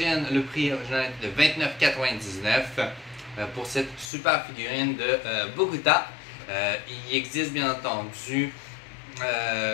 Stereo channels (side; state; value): right; drops out; at 4.1 s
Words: le prix original était de 29,99 $. Pour cette super figurine de Bogota. Il existe bien entendu